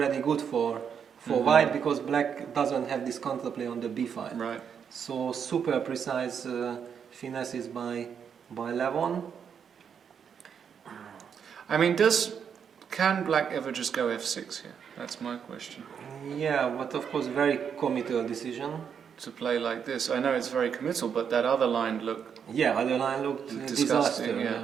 good for white, because black doesn't have this counterplay on the b5. Right. So super precise finesses by Levon. I mean, can black ever just go f6 here? That's my question. Yeah, but of course very committal decision. To play like this. I know it's very committal, but that other line looked Yeah, other line looked disgusting. disaster.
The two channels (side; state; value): left; quieter; 7.4 dB